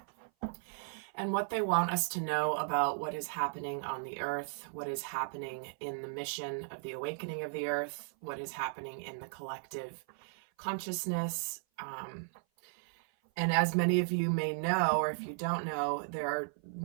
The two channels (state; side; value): silent; left; 54 dB below the other